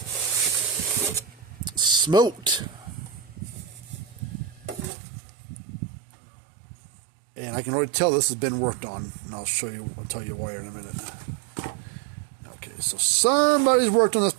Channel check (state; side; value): drops out; left; at 4.9 s